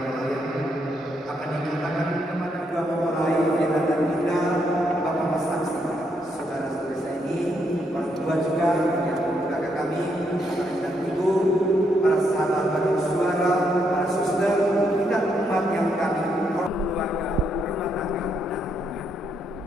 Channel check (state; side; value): normal; both; correlation 0.77